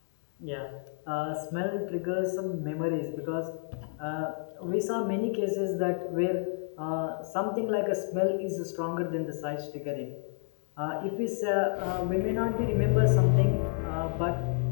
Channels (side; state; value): right; silent; 58 dB below the other